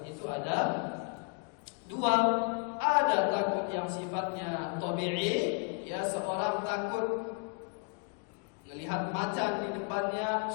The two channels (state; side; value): quieter; right; 36.7 dB